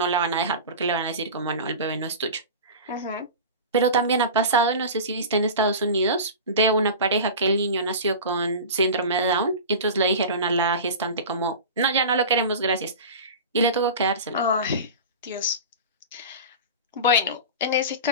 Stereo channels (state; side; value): inverted; both; correlation -0.31